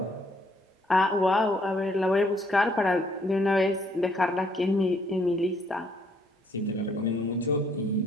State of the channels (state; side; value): normal; both; correlation 0.67